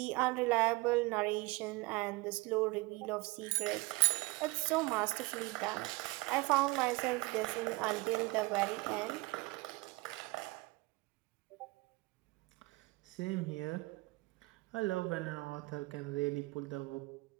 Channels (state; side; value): quieter; left; 23.7 dB